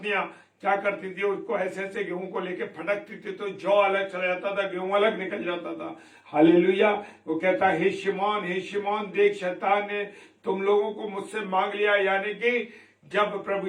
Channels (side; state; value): both; identical; correlation 1.00